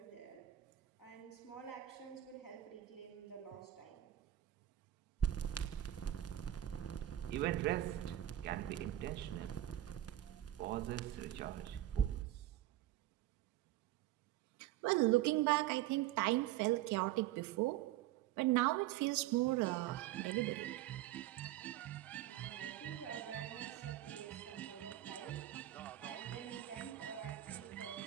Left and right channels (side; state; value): left; quieter; 13.8 dB